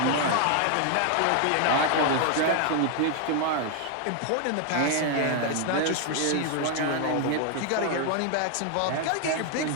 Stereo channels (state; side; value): different; both; correlation 0.00